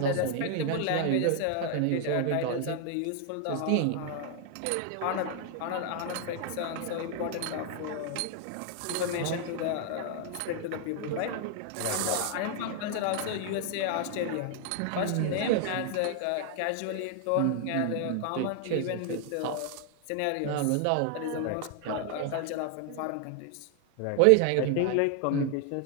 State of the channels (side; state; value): both; different; correlation 0.00